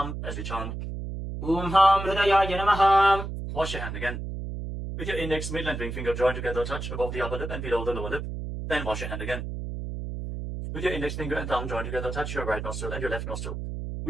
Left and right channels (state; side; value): noise; right; hum, 6 dB below the sound